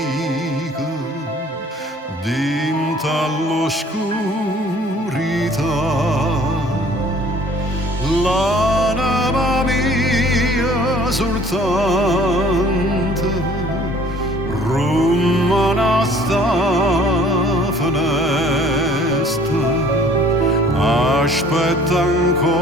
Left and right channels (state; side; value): normal; both; correlation 0.53